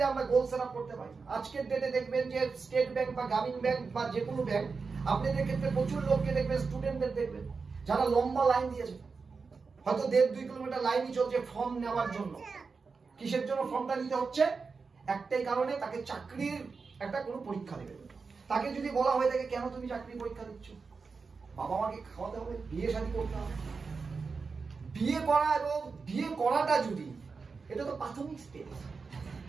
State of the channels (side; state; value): left; quieter; 4.8 dB